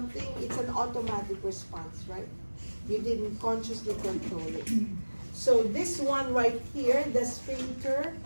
it's an automatic response, right? You didn't consciously control it. So this one right here, the sphincter,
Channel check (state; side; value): inverted; both; correlation -1.00